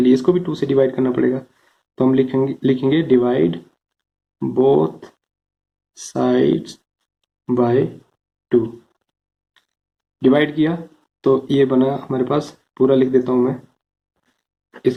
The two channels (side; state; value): both; identical; correlation 1.00